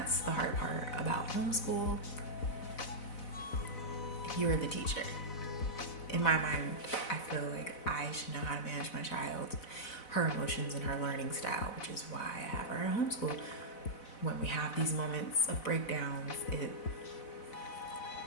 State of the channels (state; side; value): late; right; 4.0 ms